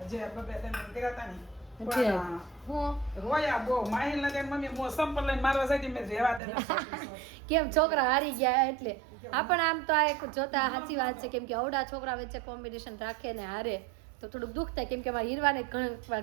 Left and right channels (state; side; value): drops out; left; at 6.4 s